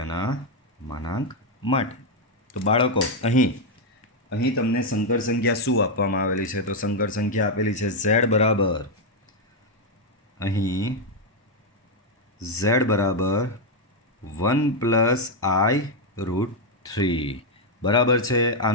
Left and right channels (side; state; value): both; normal; correlation 0.01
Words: માનાંક માટે. તો બાળકો અહીં તમને સંકર સંખ્યા શું આપવામાં આવેલી છે? તો સંકર સંખ્યા આપેલી છે z બરાબર, અહીં z બરાબર 1 + i√3. બરાબર છે.